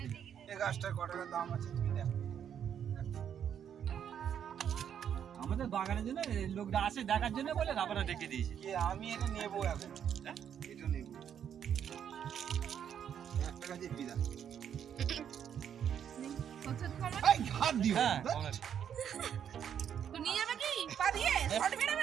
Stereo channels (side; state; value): left; quieter; 8.8 dB